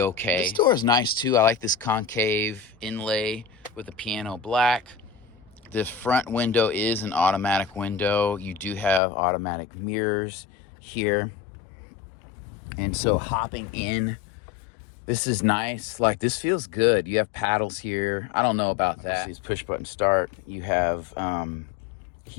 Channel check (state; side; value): drops out; right; at 9.0 s